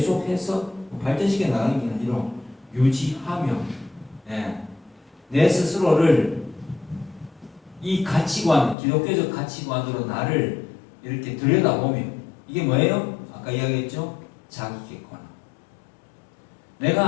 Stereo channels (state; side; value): drops out; right; at 8.8 s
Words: 발전시켜 나가는 게 아니라 유지하며, 내 스스로를 이 가치관, 기독교적 가치관으로 나를 이렇게 들여다보며, 이게 뭐예요? 아까 이야기했죠? 자기 객관.